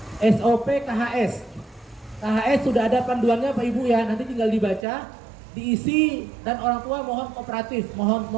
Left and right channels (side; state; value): left; drops out; at 4.9 s